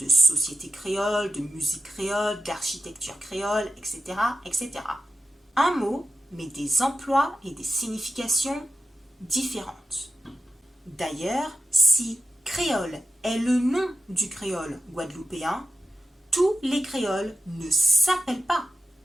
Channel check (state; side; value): normal; both; correlation 0.91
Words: société créole, de musique créole, d'architecture créole, etc., etc. Un mot, mais des emplois et des significations différentes. D'ailleurs, si créole est le nom du créole guadeloupéen, tous les créoles ne s'appellent pas